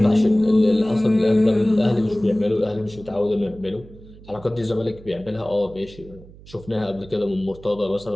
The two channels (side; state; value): right; noise; hum, 20 dB below the sound